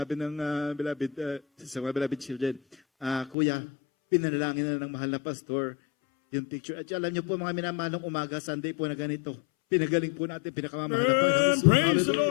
ng beloved, sa mga beloved children, Kuya, pinanalangin na ng mahal na pastor yung picture. At alam niyo po mga minamahalong umaga, Sunday po na ganito. Pinagaling po natin, pinakamamahal na Panginoon. Praise the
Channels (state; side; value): drops out; right; at 3.4 s